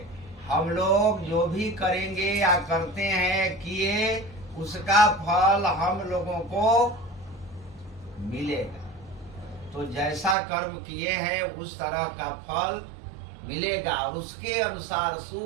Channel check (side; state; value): left; drops out; at 10.4 s